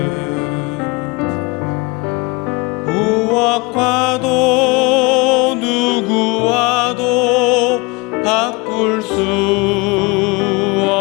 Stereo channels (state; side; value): quieter; right; 26.6 dB